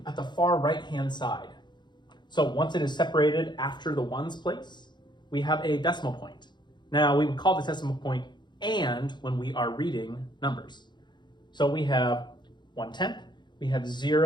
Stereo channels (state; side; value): late; right; 0.21 ms